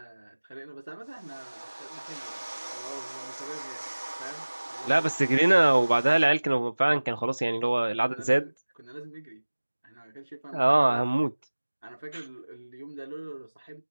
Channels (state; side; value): inverted; both; correlation -1.00